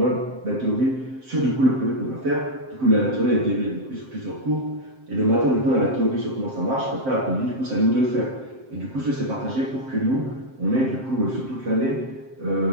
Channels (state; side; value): late; left; 7.6 ms